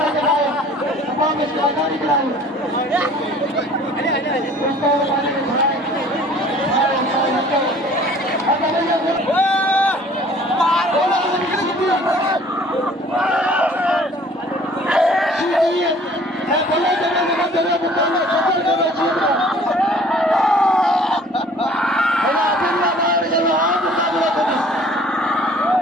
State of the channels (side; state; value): both; normal; correlation 0.52